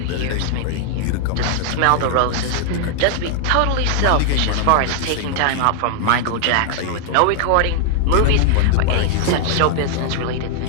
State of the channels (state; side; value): different; both; correlation 0.00